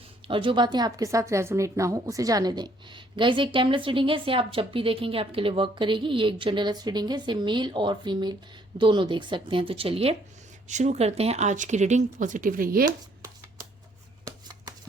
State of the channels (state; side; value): normal; both; correlation 0.65